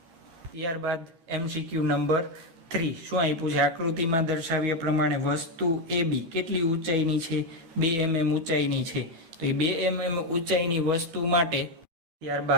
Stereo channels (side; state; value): left; late; 12 ms